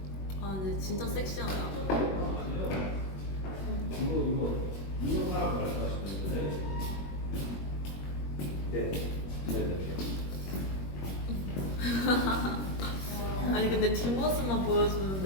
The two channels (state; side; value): late; right; 21 ms